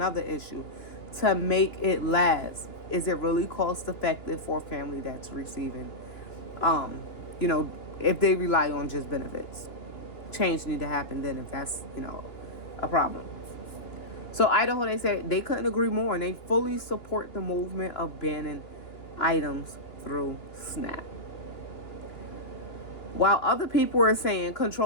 issue. To make it last. Is it really cost effective for a family that's receiving, you know, if they rely on just benefits? Change need to happen then if that's, a problem. So Idaho, they said they couldn't agree more, and they fully support the movement of banning items through SNAP. While other people are saying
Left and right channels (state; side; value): late; right; 2.9 ms